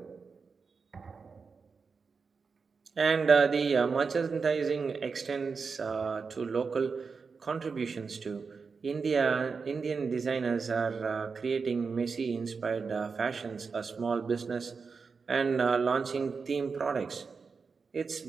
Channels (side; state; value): left; quieter; 5.1 dB